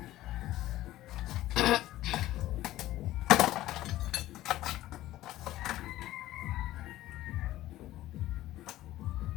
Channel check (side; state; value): right; quieter; 15.2 dB